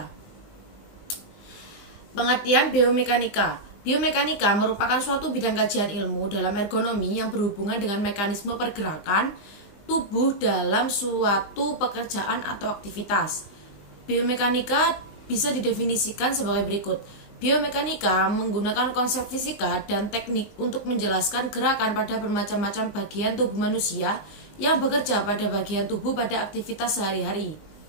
Pengertian biomekanika. Biomekanika merupakan suatu bidang kajian ilmu dalam ergonomi yang berhubungan dengan mekanisme pergerakan tubuh dalam suatu pekerjaan atau aktivitas. Biomekanika bisa didefinisikan sebagai berikut. Biomekanika menggunakan konsep fisika dan teknik untuk menjelaskan gerakan pada bermacam-macam bagian tubuh manusia yang bekerja pada bagian tubuh pada aktivitas sehari-hari.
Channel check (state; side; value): late; right; 20 ms